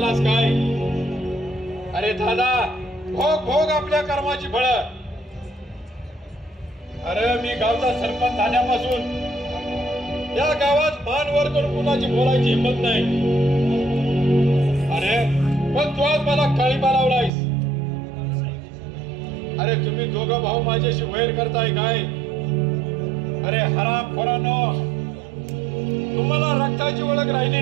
काय? अरे दादा, भोग भोग आपल्या कर्माची फळ. अरे मी गावचा सरपंच झाल्यापासून या गावात मान वर करून कुणाची बोलायची हिंमत नाही. अरे पण तू आज मला काळीबा लावलायस. अरे तुम्ही दोघं भाऊ माझ्याशी वैर करताय काय? अरे हरामखोरांनो, तुम्हाला रक्ताची ओळख राहिली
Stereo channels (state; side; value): drops out; left; at 17.3 s